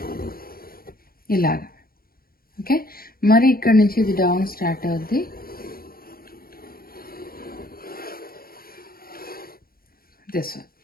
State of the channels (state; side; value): late; right; 0.43 ms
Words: ఇలాగా. ఓకే, మరి ఇక్కడ నుంచి ఇది డౌన్ స్టార్ట్ అవుద్ది, దిస్ వన్.